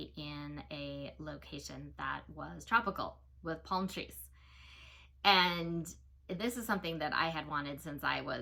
in a location that was tropical with palm trees. And this is something that I had wanted since I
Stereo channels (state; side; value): identical; both; correlation 1.00